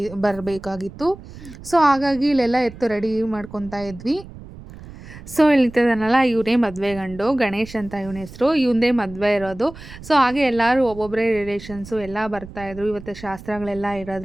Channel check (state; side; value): noise; right; rumble, 16 dB below the sound